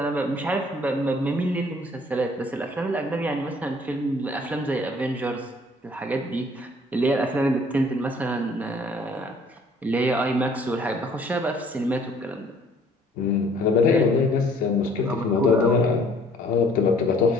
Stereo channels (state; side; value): normal; both; correlation 0.57